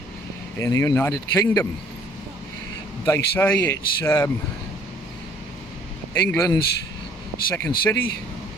in the United Kingdom. They say it's England's second city,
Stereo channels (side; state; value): both; normal; correlation 0.58